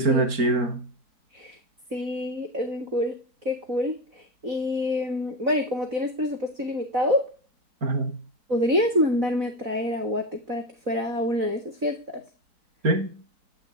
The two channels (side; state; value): left; late; 4.0 ms